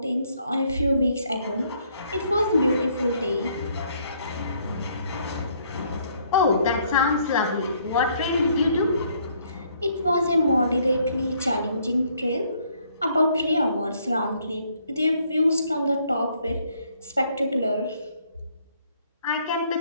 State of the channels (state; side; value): inverted; both; correlation -0.67